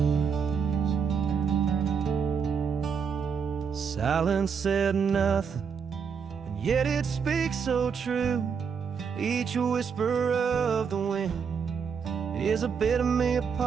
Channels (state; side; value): quieter; left; 6.4 dB